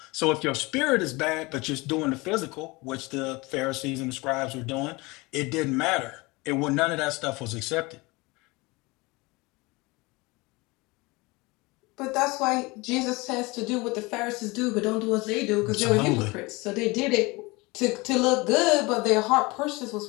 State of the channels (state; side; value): quieter; right; 24.2 dB